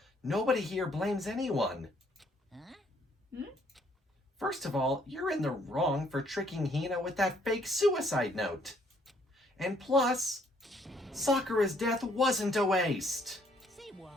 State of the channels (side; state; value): both; normal; correlation 0.66